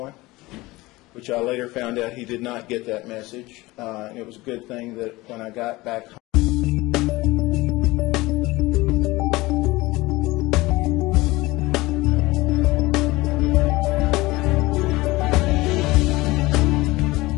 which I later found out he did not get that message. And it was a good thing that when I got back home,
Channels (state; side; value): quieter; right; 20.5 dB